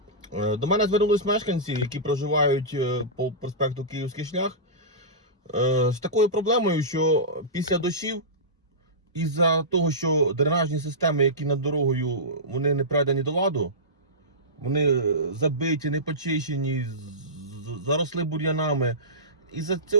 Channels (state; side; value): normal; both; correlation -0.18